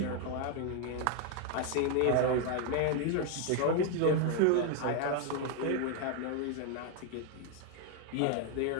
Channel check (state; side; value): different; both; correlation 0.01